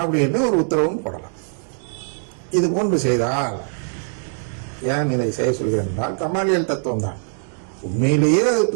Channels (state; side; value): silent; left; digital silence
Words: அப்படின்னு ஒரு உத்தரவும் போடலாம். இது போன்று செய்தால், ஏன் இதை செய்ய சொல்கிறேன் என்றால், கமாலியல் தத்துவம் தான். உண்மையிலேயே